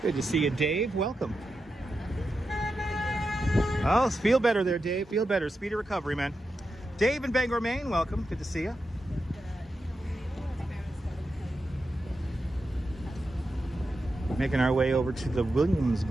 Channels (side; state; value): both; normal; correlation 0.89